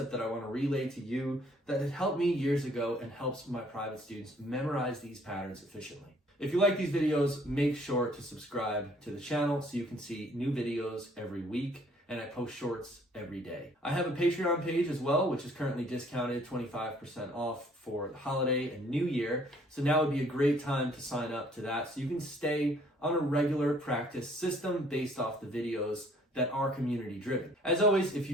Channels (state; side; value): normal; both; correlation 0.60